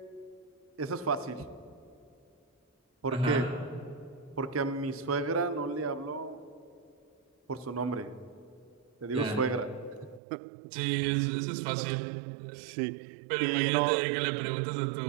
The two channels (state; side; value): drops out; left; at 10.2 s